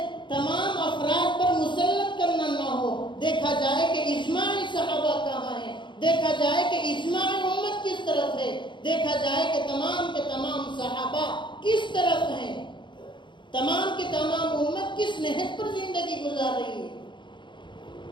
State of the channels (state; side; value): late; right; 0.23 ms